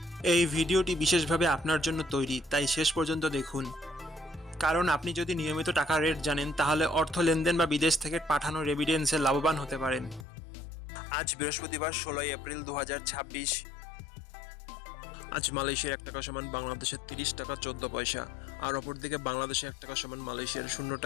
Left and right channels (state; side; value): drops out; right; at 10.2 s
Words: এই ভিডিওটি বিশেষভাবে আপনার জন্য তৈরি, তাই শেষ পর্যন্ত দেখুন। কারণ আপনি যদি নিয়মিত টাকার রেট জানেন, তাহলে অর্থ লেনদেন বা বিদেশ থেকে পাঠানো রেমিটেন্সে লাভবান হতে পারেন। আজ বৃহস্পতিবার 16 এপ্রিল 2026। আজ মালয়েশিয়ার 1 টাকা সমান বাংলাদেশের 30 টাকা 14 পয়সা, আর অপরদিকে বাংলাদেশে 1 টাকা সমান মালয়েশিয়ার 0